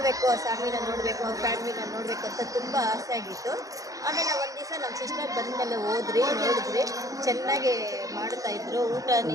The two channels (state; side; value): late; left; 0.17 ms